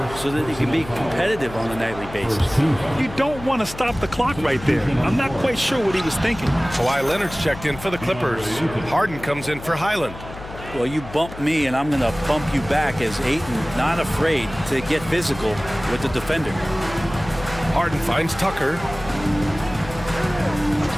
so that they can be competitive on a nightly basis. You don't want to stop the clock right there. I'm not quite sure what he was thinking. Kawhi Leonard's checked in for the Clippers. Harden comes in for Highland. Well, you bump me, and I'm going to bump you back as Ayton not afraid to get physical with the defender. Harden finds Tucker.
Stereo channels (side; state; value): left; noise; hum, 14 dB below the sound